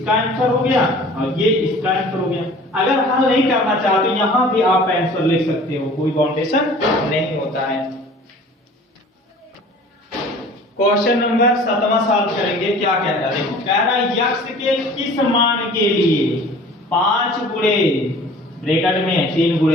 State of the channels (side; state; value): both; normal; correlation 0.46